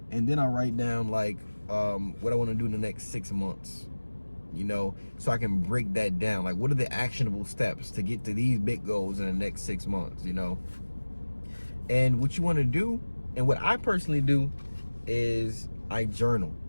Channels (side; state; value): both; inverted; correlation -1.00